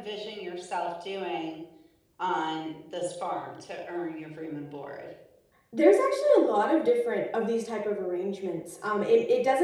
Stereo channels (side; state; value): both; identical; correlation 1.00